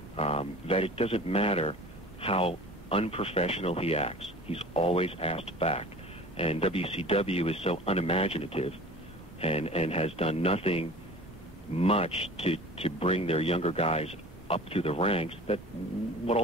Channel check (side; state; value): both; normal; correlation 0.41